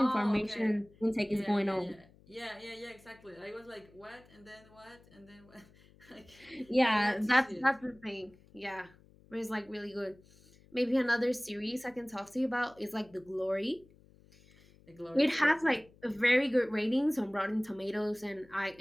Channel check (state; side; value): noise; left; hum, 27 dB below the sound